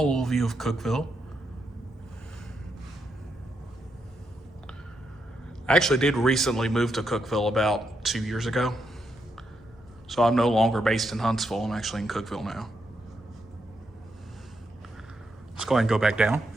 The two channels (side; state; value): both; normal; correlation 0.81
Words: little view of Cookeville. I actually did recently move to Cookeville about 2 years ago. So I'm no longer based in Huntsville, I'm actually in Cookeville now. Let's go ahead and go back down.